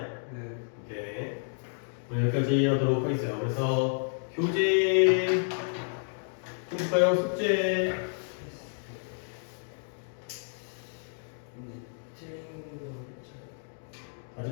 오케이. 오늘 여기까지 하도록 하겠어요. 그래서 교재 좀 볼까요? 숙제 틀린 거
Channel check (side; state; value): right; silent; digital silence